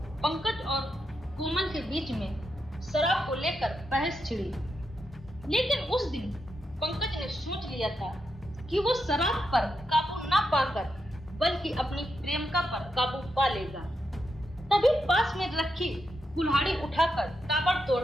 पंकज और कोमल के बीच में शराब को लेकर बहस छिड़ी। लेकिन उस दिन पंकज ने सोच लिया था कि वो शराब पर काबू ना पाकर बल्कि अपनी प्रेमिका पर काबू पा लेगा। तभी पास में रखी कुल्हाड़ी उठाकर ताबड़तोड़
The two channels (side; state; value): both; normal; correlation 0.84